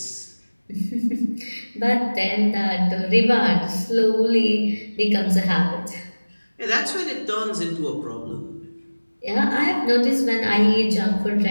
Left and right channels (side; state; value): both; inverted; correlation -1.00